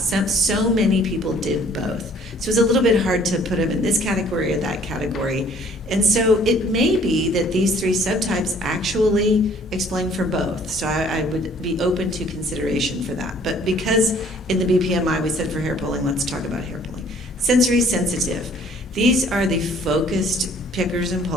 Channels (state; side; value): normal; both; correlation 0.57